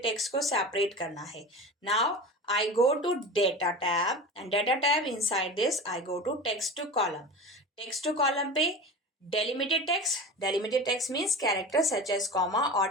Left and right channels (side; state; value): both; normal; correlation 0.30